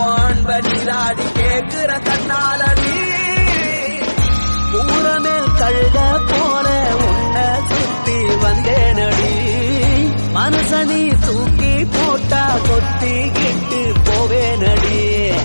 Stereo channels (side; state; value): both; inverted; correlation -1.00